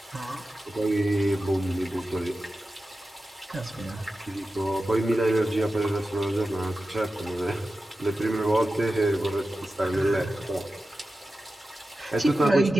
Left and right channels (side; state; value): both; normal; correlation 0.93